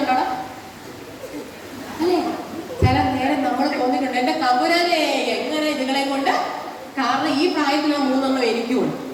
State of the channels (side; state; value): both; identical; correlation 1.00